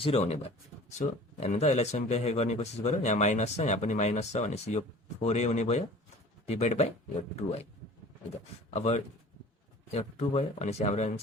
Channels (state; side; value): normal; both; correlation 0.44